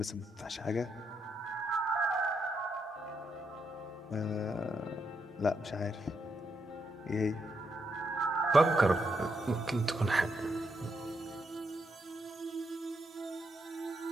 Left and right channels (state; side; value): normal; both; correlation 0.80